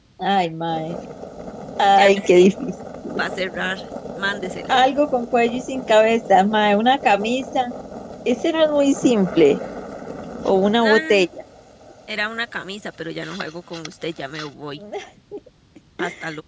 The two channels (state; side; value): identical; both; correlation 1.00